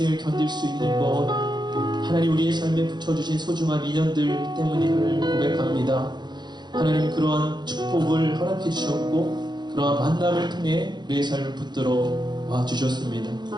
견딜 수 있는 것, 하나님 우리의 삶에 붙여주신 소중한 인연들 때문임을 고백합니다. 하나님, 그러한 축복을 허락해 주셨고 그러한 만남을 통해 우리의 삶을 붙들어 와 주셨습니다.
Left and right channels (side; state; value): left; late; 0.21 ms